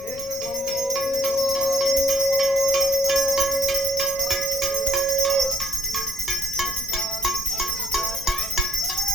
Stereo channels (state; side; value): noise; left; rumble, 19 dB below the sound